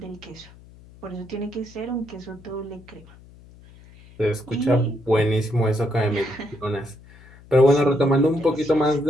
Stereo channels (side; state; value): left; noise; hum, 23 dB below the sound